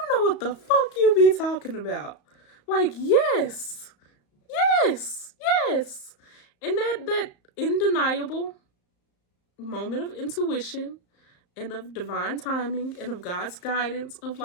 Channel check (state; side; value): late; right; 34 ms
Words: know what the fuck you be talking about? Like, yes. And that undeniable moment of intuition and of divine timing and of God's guidance, of